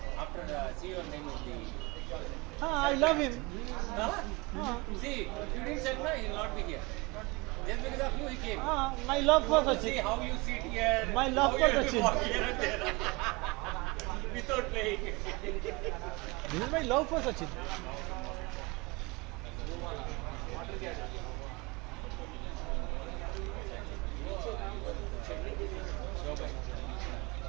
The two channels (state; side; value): quieter; left; 25.6 dB